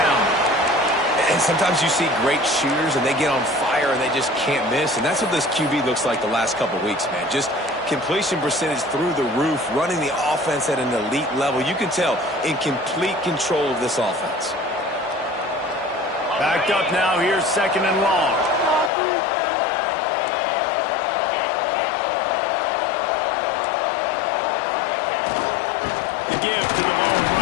And sometimes you see great shooters, and they get on fire, and they just can't miss. And that's what this QB looks like the last couple weeks, man. Just completion percentage through the roof, running the offense at an elite level. You can tell in complete control of this offense. Backed up now. Here's second and long. The give to the lone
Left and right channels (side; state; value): right; drops out; at 18.9 s